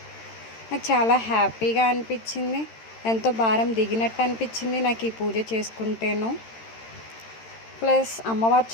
నాకు చాలా హ్యాపీగా అనిపించింది, ఎంతో భారం దిగినట్టు అనిపించింది నాకు ఈ పూజ చేసుకుంటేను. ప్లస్ అమ్మవారు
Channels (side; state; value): right; late; 13 ms